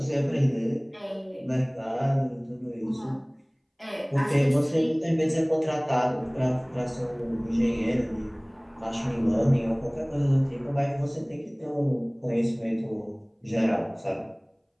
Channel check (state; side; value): identical; both; correlation 1.00